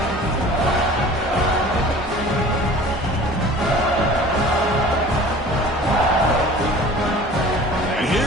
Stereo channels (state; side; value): normal; both; correlation 0.44